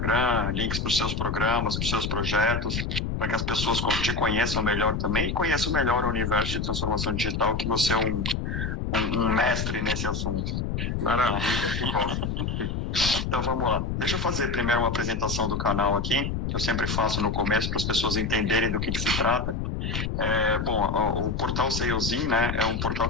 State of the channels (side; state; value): left; noise; rumble, 2 dB below the sound